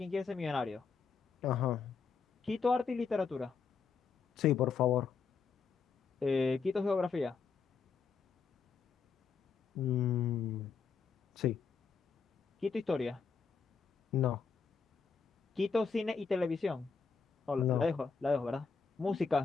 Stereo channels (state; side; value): quieter; right; 5.5 dB